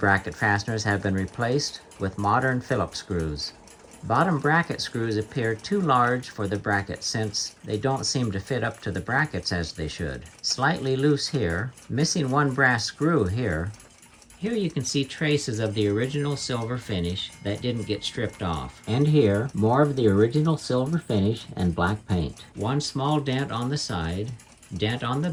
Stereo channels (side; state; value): both; identical; correlation 1.00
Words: fasteners have been replaced with modern Phillips screws. Bottom bracket screws appear too large for the bracket since they don't seem to fit up to the brackets as they should. Slightly loose here, missing one brass screw here. Here you can see traces of the original silver finish that didn't get stripped off. And here, more of the original silver finish and black paint. One small dent on the side, dent on the